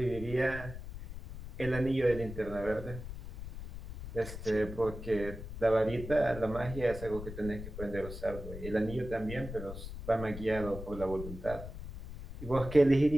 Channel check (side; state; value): left; noise; rumble, 10 dB below the sound